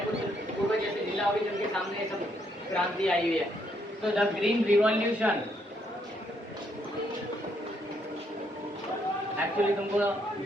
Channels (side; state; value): both; normal; correlation 0.73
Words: कुछ पूर्व जैसे जिला होगी जिनके सामने सब क्रांति आई हुई है। तो द ग्रीन रिवॉल्यूशन, एक्चुअली तुमको